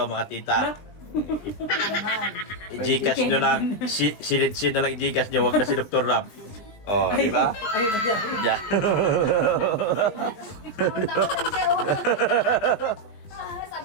mga tita. I-Gcash nyo lang. Silid-sin na lang i-Gcash nyo. Huwag na si Dr. Lab. Oh, di ba? Yeah.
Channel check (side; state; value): right; late; 20 ms